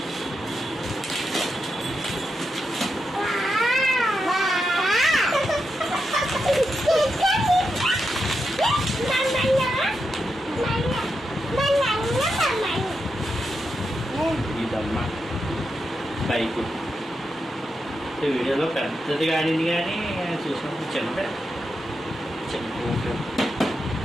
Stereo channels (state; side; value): normal; both; correlation 0.86